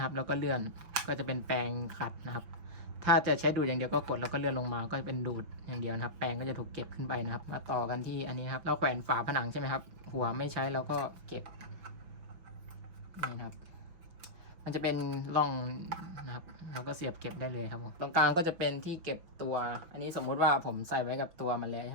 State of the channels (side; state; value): left; late; 6.1 ms